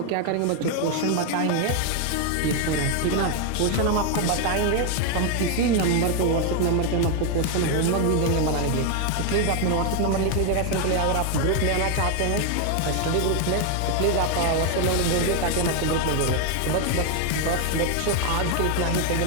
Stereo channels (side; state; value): both; different; correlation 0.01